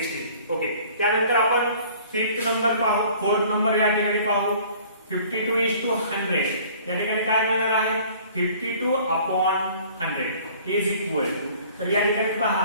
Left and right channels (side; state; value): both; inverted; correlation -0.51